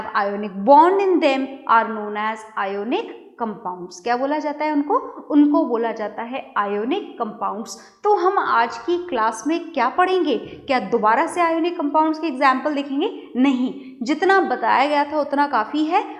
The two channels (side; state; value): both; identical; correlation 1.00